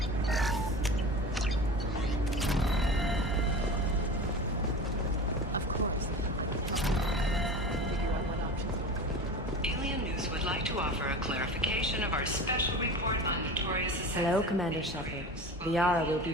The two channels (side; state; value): both; normal; correlation 0.33